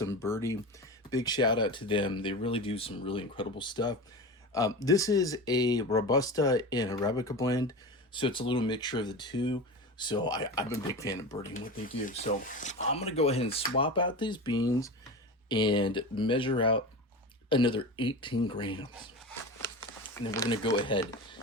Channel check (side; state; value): both; normal; correlation 0.27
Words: Birdie. Big shout out to them. They really do some really incredible stuff. This is a Robusta and Arabica blend, so it's a little mixture of the two. So I'm a big fan of birding what they do. So I'm going to go ahead and swap out these beans and measure out another 18 grams. And then we're going to go ahead